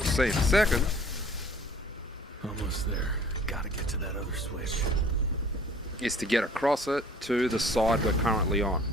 see in a second, Almost there. Gotta get to that other switch. is to get across it to the side we're currently on.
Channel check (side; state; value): both; normal; correlation 0.52